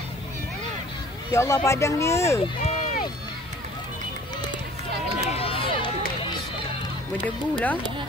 Ya Allah, padang dia. Berdebu lah.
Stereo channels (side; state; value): both; normal; correlation 0.50